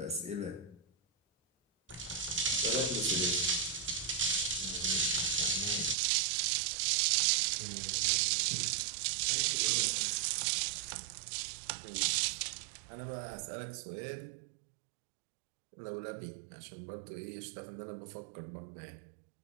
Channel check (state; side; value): drops out; left; at 6.0 s